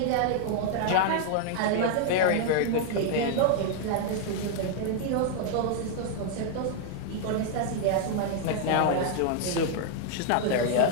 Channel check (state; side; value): different; both; correlation 0.00